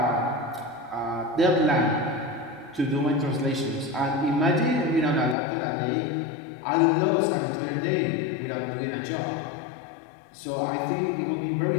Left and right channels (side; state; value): right; drops out; at 5.4 s